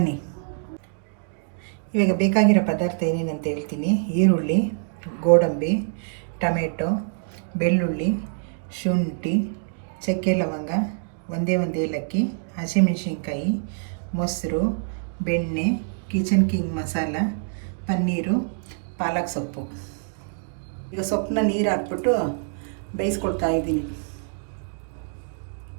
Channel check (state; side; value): silent; left; digital silence